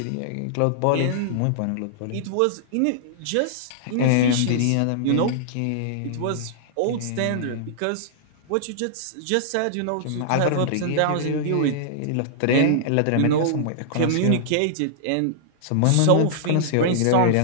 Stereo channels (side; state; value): both; different; correlation -0.01